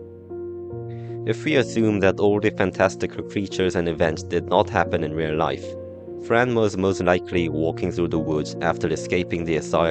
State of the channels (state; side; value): identical; both; correlation 1.00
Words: If we assume that all the fantastical creatures and events did not happen in real life, Fran was most likely walking through the woods after escaping the